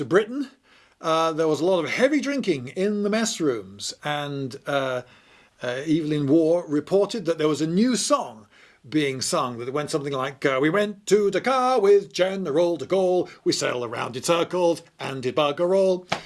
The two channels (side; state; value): both; identical; correlation 1.00